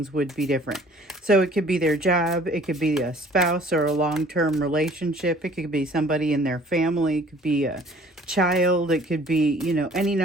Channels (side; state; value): both; normal; correlation 0.53